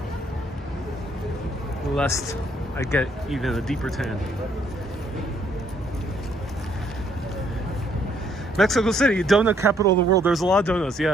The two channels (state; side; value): normal; both; correlation 0.68